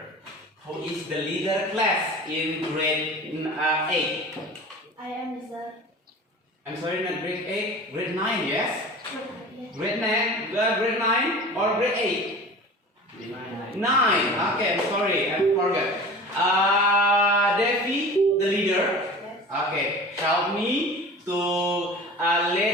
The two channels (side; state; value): both; normal; correlation 0.38